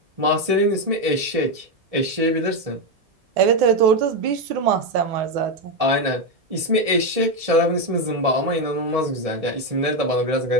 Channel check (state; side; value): late; left; 1.7 ms